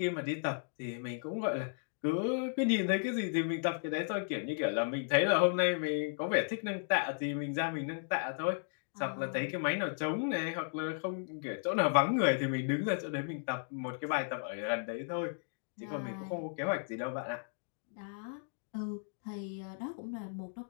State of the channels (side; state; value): right; silent; digital silence